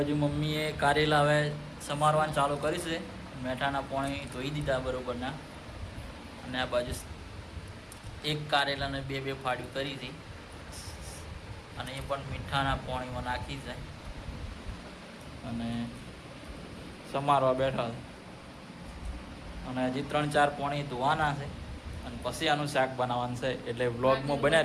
મમ્મીએ કારેલા હવે સમારવાનું ચાલુ કરી છે. મેઠાના પાણી ધોઈ દીધા બરોબરના. અને આ બાજુ એક કારેલાને બે ફાડ્યું કરી હતી, અને એ પણ મીઠાના પાણીમાં નાખી છે અને સમારવા બેઠા છે. અને હજી 3-4 પોણી ધોવાના છે, અને પછી આનું શાક બનાવવાનું છે. એટલે વ્લોગમાં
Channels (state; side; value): identical; both; correlation 1.00